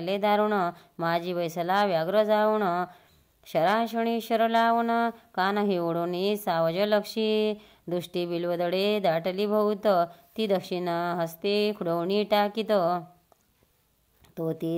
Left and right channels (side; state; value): both; identical; correlation 1.00